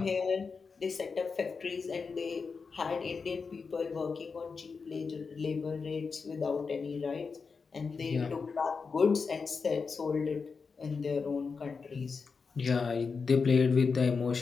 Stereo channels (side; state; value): right; quieter; 5.0 dB